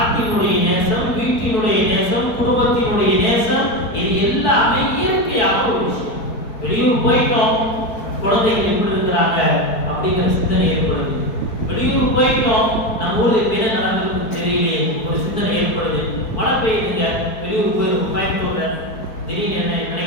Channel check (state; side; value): late; right; 4.6 ms